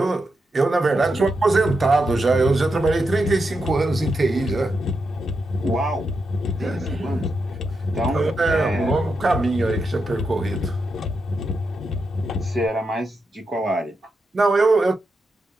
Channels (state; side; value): normal; both; correlation 0.86